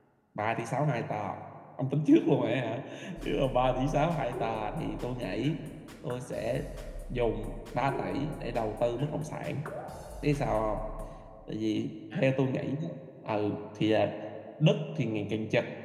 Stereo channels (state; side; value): identical; both; correlation 1.00